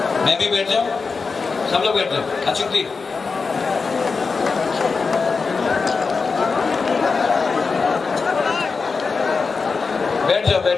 मैं भी बैठ जाऊं, सब लोग बैठ जाओ। अचुक्ति बैठ जाओ,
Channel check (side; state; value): right; quieter; 4.7 dB